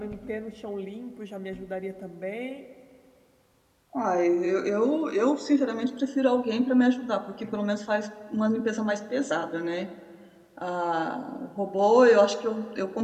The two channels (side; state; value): both; identical; correlation 1.00